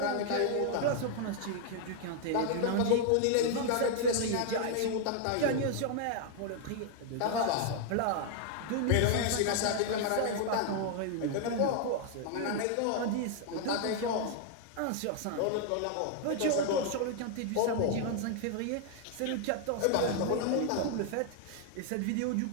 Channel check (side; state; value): both; different; correlation 0.00